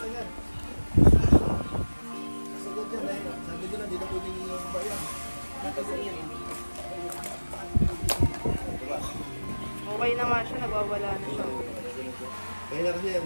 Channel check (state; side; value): inverted; both; correlation -1.00